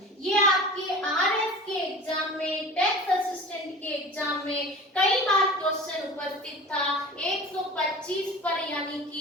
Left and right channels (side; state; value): both; normal; correlation 0.37